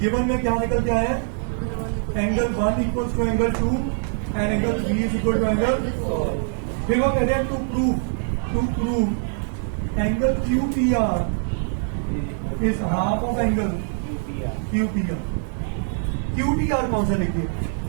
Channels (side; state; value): left; silent; 63 dB below the other